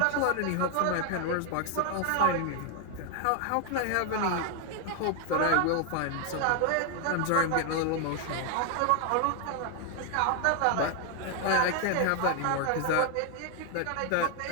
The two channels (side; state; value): both; different; correlation 0.00